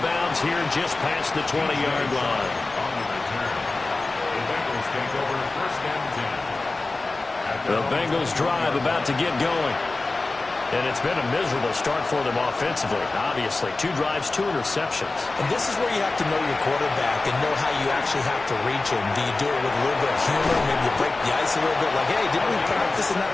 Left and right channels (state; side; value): quieter; right; 3.3 dB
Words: bounds here just past the 20-yard line. On the return, the Bengals take over 1st and 10. The Bengals drive about to get going. And it's been a miserable start for them offensively, obviously. 2 drives, 2 interceptions. And this is where you have to know your quarterback and know how you actually have to reach him. Do you do it with a little bit of humor? Maybe you break the ice a little bit like, hey, didn't we practice in that